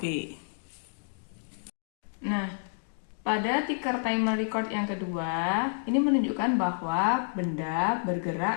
Nah, pada ticker timer record yang kedua, ini menunjukkan bahwa benda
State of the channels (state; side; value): silent; right; digital silence